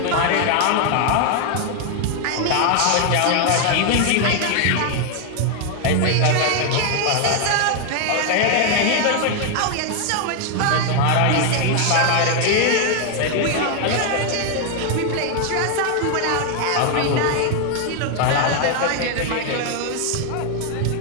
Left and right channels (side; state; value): both; different; correlation 0.00